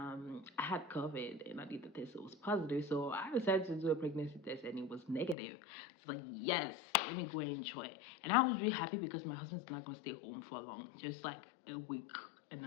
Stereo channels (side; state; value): right; drops out; at 5.4 s